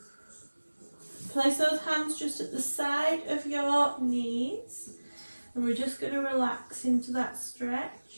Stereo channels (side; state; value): both; inverted; correlation -1.00